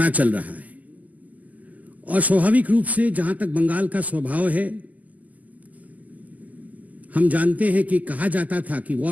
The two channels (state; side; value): late; left; 0.078 ms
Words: चल रहा है और स्वाभाविक रूप से जहां तक बंगाल का स्वभाव है, हम जानते हैं कि कहा जाता था कि